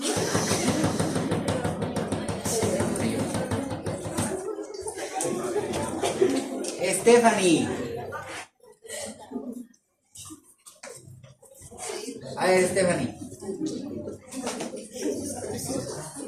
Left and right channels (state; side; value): identical; both; correlation 1.00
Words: Stephanie. A ver, Stephanie.